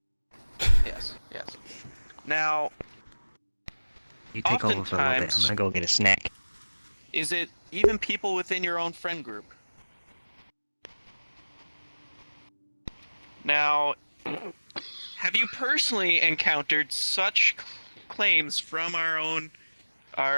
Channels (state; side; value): inverted; both; correlation -1.00